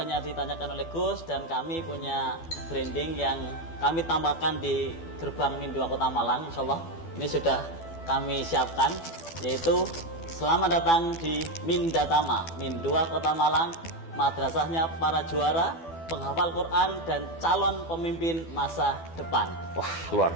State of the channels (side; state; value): right; late; 12 ms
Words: ditanyakan oleh Gus dan kami punya branding yang kami tambahkan di gerbang Mindua Kota Malang, insyaallah ini sudah kami siapkan. yaitu selamat datang di Mindatama, Min 2 Kota Malang, madrasahnya para juara, penghafal Quran dan calon pemimpin masa depan. Wah, luar